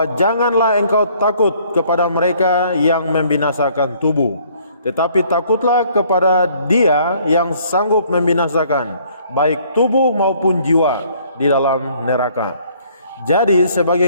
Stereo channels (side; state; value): both; inverted; correlation -0.61